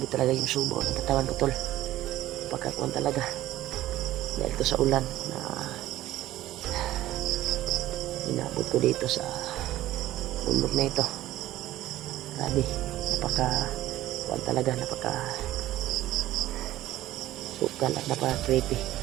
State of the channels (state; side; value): quieter; left; 14.9 dB